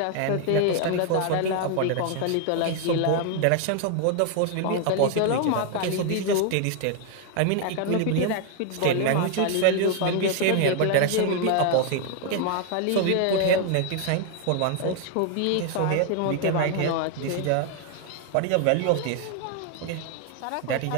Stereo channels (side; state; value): both; different; correlation 0.00